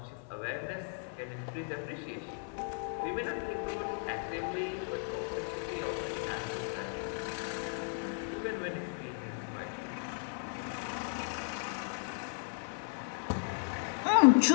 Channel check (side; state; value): right; silent; 54 dB below the other